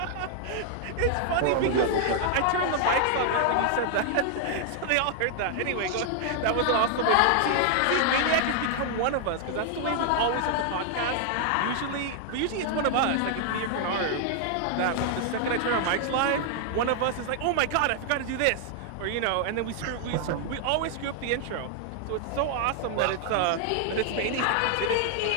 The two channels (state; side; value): different; both; correlation 0.00